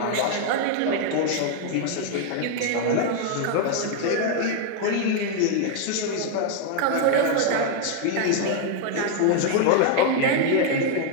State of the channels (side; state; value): both; different; correlation 0.00